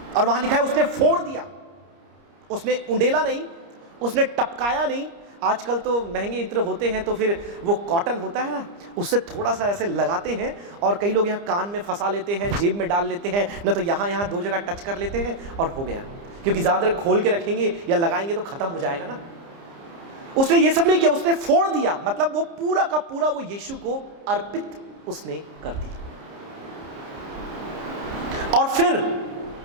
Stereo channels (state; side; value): late; left; 30 ms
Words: और वहां लिखा है उसने फोड़ दिया, उसने उंडेला नहीं, उसने टपकाया नहीं। आजकल तो महंगे इत्र होते हैं तो फिर वो कॉटन होता है ना, उससे थोड़ा सा ऐसे लगाते हैं और कई लोग यहाँ कान में फंसा लेते हैं, जेब में डाल लेते हैं, न तो यहाँ 2 जगह टच कर लेते हैं और हो गया। क्योंकि ज़्यादा देर खोल के रखेंगे या लगाएंगे तो खत्म हो जाएगा ना। उसने ये सब नहीं किया, उसने फोड़ दिया, मतलब वो पूरा का पूरा वो यीशु को अर्पित उसने कर दिया। और फिर